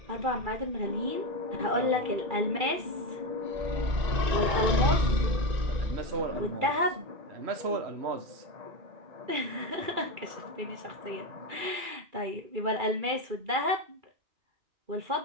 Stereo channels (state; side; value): late; left; 2.3 ms